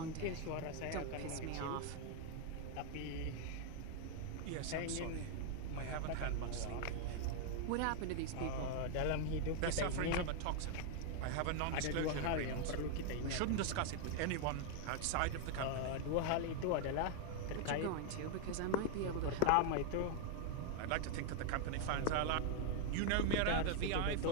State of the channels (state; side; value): different; both; correlation 0.00